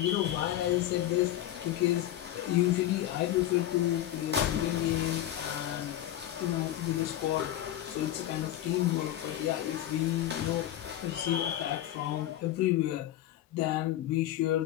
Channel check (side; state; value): right; quieter; 13.1 dB